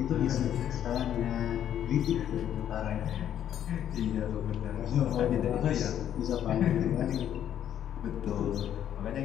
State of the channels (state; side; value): quieter; right; 10.3 dB